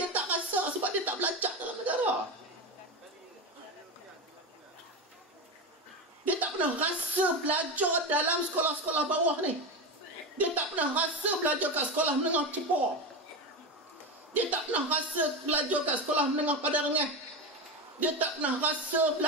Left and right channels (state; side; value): normal; both; correlation 0.19